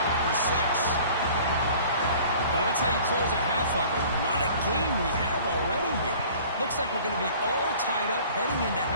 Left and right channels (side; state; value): both; inverted; correlation -0.48